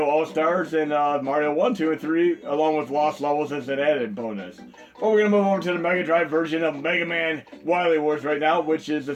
All-Stars and Mario 1, 2, and 3, along with Lost Levels as an added bonus. But we're going to move over to the Mega Drive version of Mega Man Wily Wars right now, which is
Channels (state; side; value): identical; both; correlation 1.00